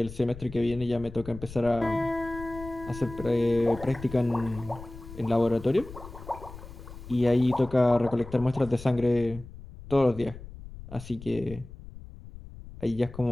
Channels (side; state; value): left; noise; rumble, 15 dB below the sound